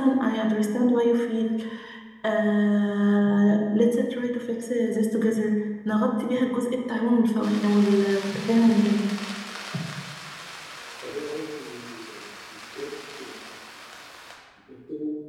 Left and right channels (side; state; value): both; identical; correlation 1.00